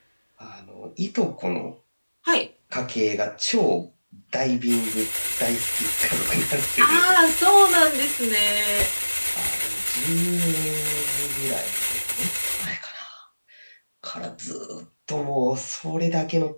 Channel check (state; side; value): inverted; both; correlation -1.00